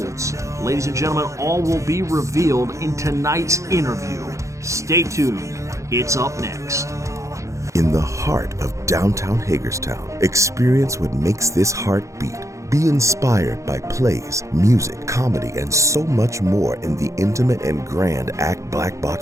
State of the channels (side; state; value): left; late; 0.15 ms